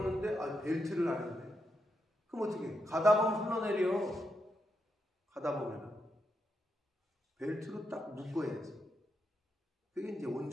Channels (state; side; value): normal; both; correlation 0.83